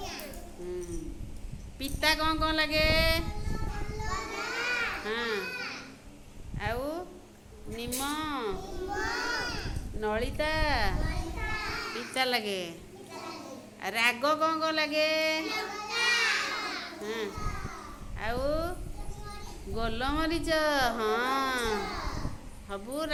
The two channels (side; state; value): both; identical; correlation 1.00